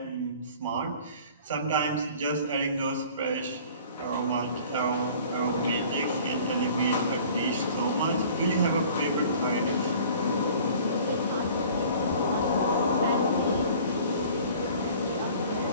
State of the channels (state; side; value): inverted; both; correlation -0.48